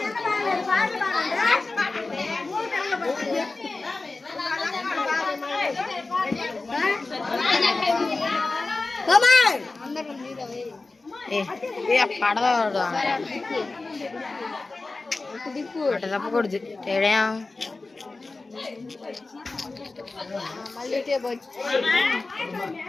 పడదు అట తప్పకూడదు. తేడా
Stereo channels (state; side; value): quieter; right; 3.5 dB